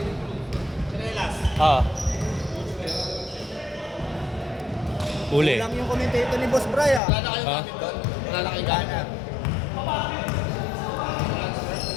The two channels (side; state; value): right; drops out; at 7.0 s